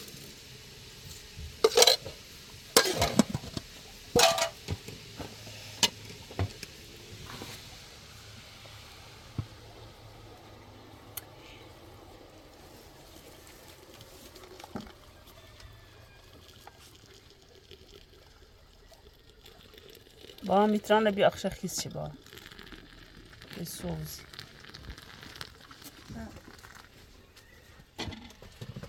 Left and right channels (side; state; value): both; identical; correlation 1.00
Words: با میتران بی اخش خیس چی با سوز